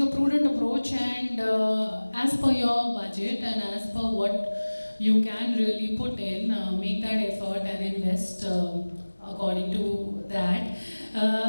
a prudent approach and as per your budget and as per what you can really put in, make that effort and invest according to that.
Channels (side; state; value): both; inverted; correlation -1.00